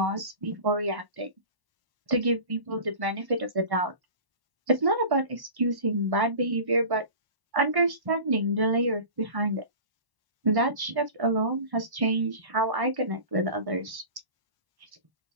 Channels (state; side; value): late; left; 1.1 ms